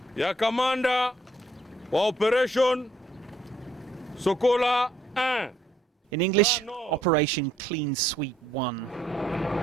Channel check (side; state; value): both; normal; correlation 0.68